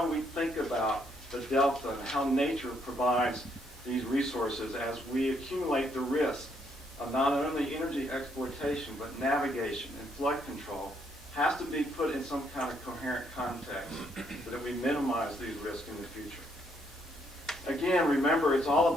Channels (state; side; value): normal; both; correlation 0.72